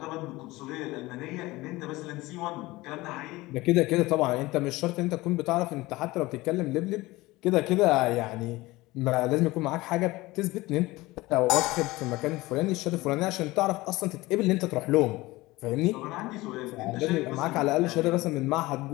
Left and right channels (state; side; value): quieter; right; 20.1 dB